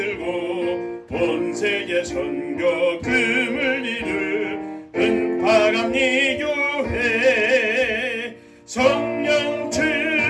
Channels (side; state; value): both; identical; correlation 1.00